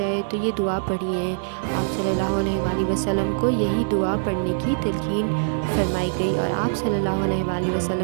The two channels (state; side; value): silent; left; 63 dB below the other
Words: تو یہ دعا پڑھیے۔ آپ صلی اللہ علیہ وآلہ وسلم کو یہی دعا پڑھنے کی تلقین فرمائی گئی اور آپ صلی اللہ علیہ وآلہ